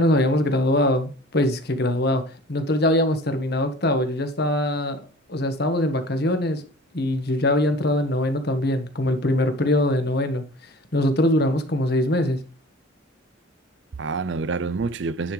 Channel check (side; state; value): both; normal; correlation 0.43